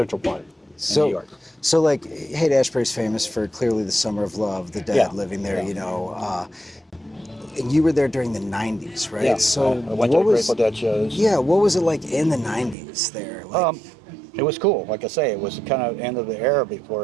Park in New So, York. so like Haight-Ashbury's famous for clearly the Summer of Love, the Dead Yeah. living there. Yeah. And you were there during the '90s, right? Yeah. So I went to the Grateful Dead shows. Yeah, what was it like in the '90s there? Like, It was cool. Like I say, it was kind of end of the era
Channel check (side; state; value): left; drops out; at 12.8 s